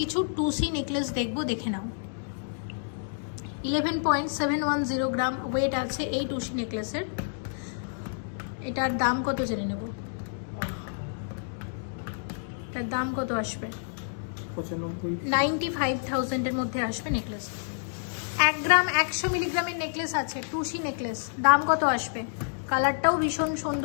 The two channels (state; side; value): silent; right; digital silence